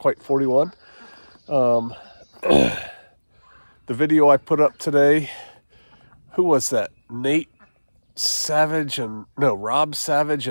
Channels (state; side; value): inverted; both; correlation -1.00